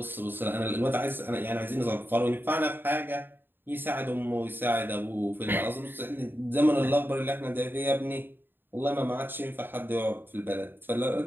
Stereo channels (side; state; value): left; late; 0.097 ms